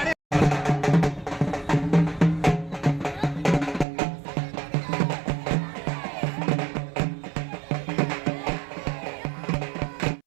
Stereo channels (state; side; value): drops out; left; at 3.9 s